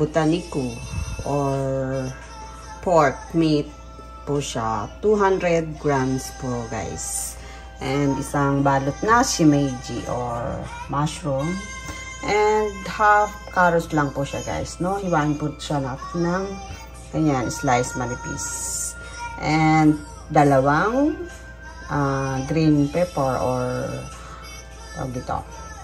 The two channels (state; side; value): identical; both; correlation 1.00